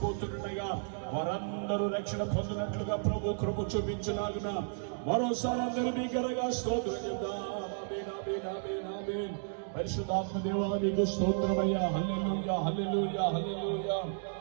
వారందరూ రక్షణ పొందినట్లుగా ప్రభు కృప చూపించలాగున మరోసారి అందరూ మీ గనగా స్తోత్రం చెప్దాం. ఆమేన్ ఆమేన్ ఆమేన్ ఆమేన్. పరిశుద్ధాత్మ దేవా నీకు స్తోత్రమయ్యా. హల్లెలూయా హల్లెలూయా హల్లెలూయా.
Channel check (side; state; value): left; silent; digital silence